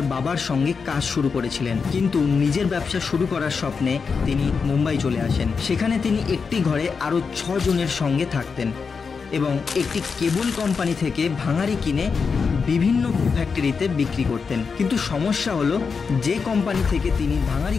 বাবার সঙ্গে কাজ শুরু করেছিলেন, কিন্তু নিজের ব্যবসা শুরু করার স্বপ্নে তিনি মুম্বাই চলে আসেন। সেখানে তিনি একটি ঘরে আরও 6 জনের সঙ্গে থাকতেন এবং একটি কেবল কোম্পানি থেকে ভাঙাড়ি কিনে বিভিন্ন ফ্যাক্টরিতে বিক্রি করতেন। কিন্তু সমস্যা হলো, যে কোম্পানি থেকে তিনি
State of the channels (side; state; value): right; quieter; 5.4 dB